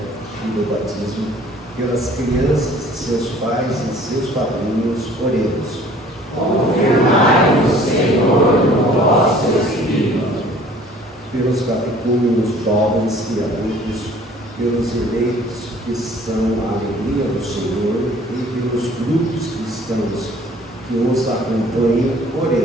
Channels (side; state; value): both; normal; correlation 0.53